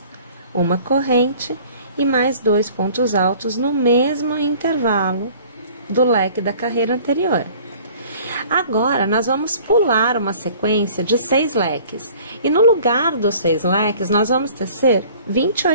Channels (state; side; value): inverted; both; correlation -0.50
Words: uma corrente e mais 2 pontos altos no mesmo intervalo do leque da carreira anterior. Agora, nós vamos pular uma sequência de 6 leques. E no lugar dos 6 leques, nós vamos tecer